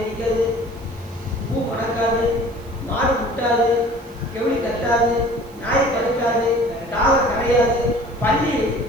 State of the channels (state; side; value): noise; right; hiss, 27 dB below the sound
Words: அடிக்காது, பூ மணக்காது, மாடு முட்டாது, கெவுளி கட்டாது, நாய் பறக்காது, காலை கரையாது, பள்ளி